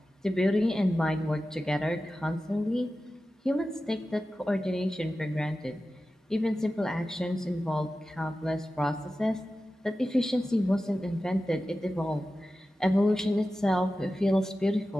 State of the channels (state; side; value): normal; both; correlation 0.94